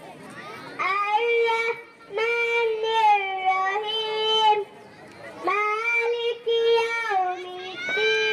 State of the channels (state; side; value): identical; both; correlation 1.00